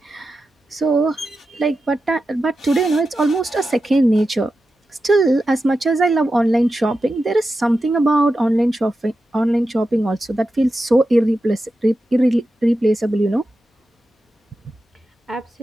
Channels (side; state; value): both; normal; correlation 0.91